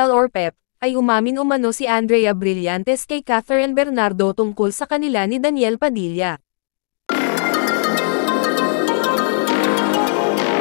or PEP, ay umamin umano si Andrea Brillantes kay Catherine Bernardo tungkol sa kanila ni Daniel Padilla.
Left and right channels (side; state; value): right; silent; digital silence